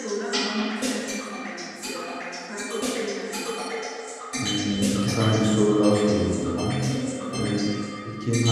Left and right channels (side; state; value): both; identical; correlation 1.00